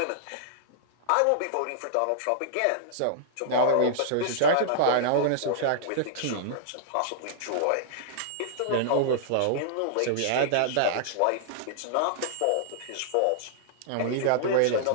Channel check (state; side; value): different; both; correlation -0.01